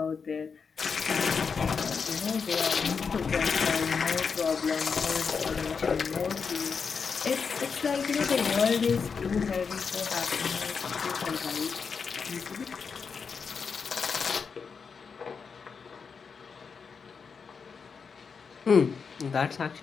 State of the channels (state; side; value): quieter; right; 5.7 dB